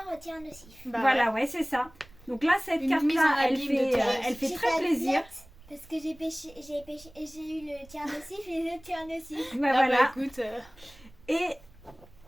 tient nocif. Bah Voilà, ouais, c'est ça. Donc là, cette Une mise en carte-là, elle abîme de fait, Thérèse. elle fait J'ai très pas de plaisir. lettre, parce que j'ai eu le tient nocif et le tient nocif. Bah, Ah voilà. bah écoute, Et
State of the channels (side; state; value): right; noise; rumble, 24 dB below the sound